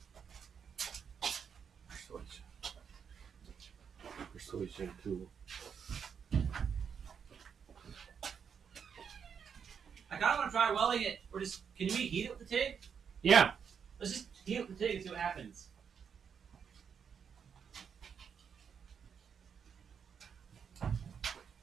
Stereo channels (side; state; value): left; quieter; 7.0 dB